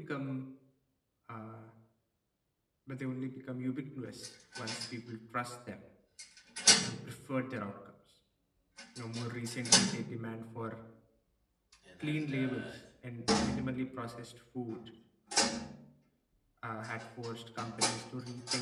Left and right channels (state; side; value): identical; both; correlation 1.00